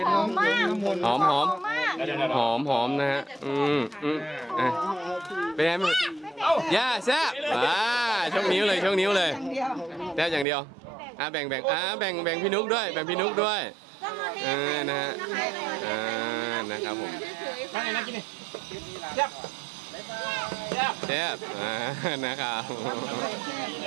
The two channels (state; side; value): drops out; left; at 10.5 s